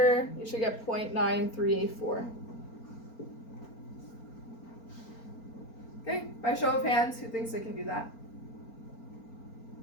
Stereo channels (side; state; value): right; late; 4.4 ms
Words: you should get 0.9384. Okay, by show of hands, who thinks they can do that?